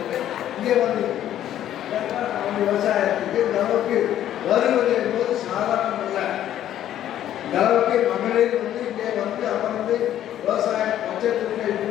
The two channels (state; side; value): quieter; right; 11.6 dB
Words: இங்கே வந்து அவங்க விவசாயத்துக்கு இந்த அளவுக்கு வருவது என்பது சாதாரணம் இல்லை. இந்த அளவுக்கு மகளிர் வந்து இங்கே வந்து அமர்ந்து விவசாய பட்சத்திற்கை